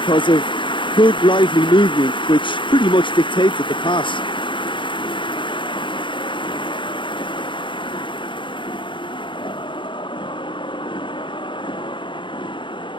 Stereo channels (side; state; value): right; late; 0.24 ms